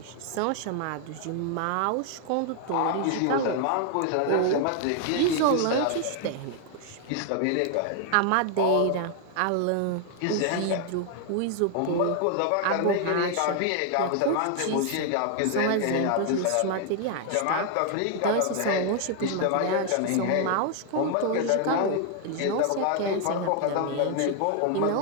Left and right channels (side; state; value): both; different; correlation 0.00